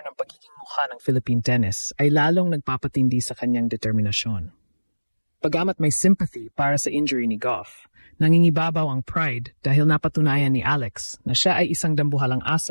ng pagiging mukha ng Philippine tennis ay lalong nagpapatindi sa kanyang determinasyon. Pagamat may sympathy para sa injury ni Gauff, nangingibabaw ang pride dahil napatunayan ni Alex na siya ay isang dambuhalang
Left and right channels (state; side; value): inverted; both; correlation -1.00